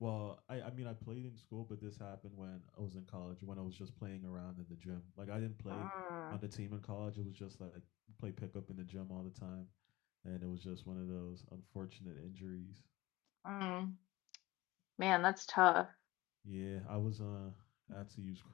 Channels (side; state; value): right; quieter; 19.3 dB